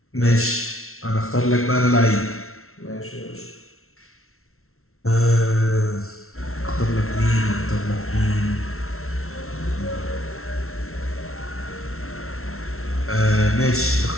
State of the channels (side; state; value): right; late; 0.62 ms